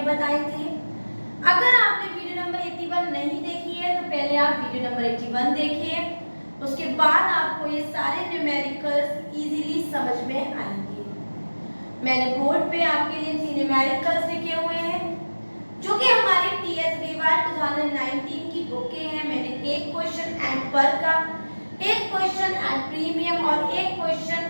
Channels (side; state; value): both; inverted; correlation -1.00